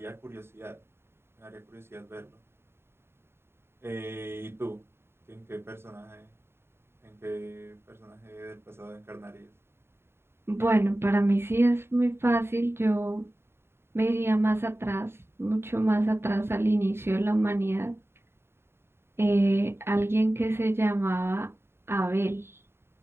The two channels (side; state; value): left; late; 0.12 ms